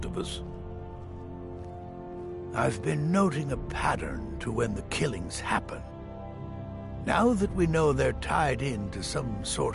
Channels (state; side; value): identical; both; correlation 1.00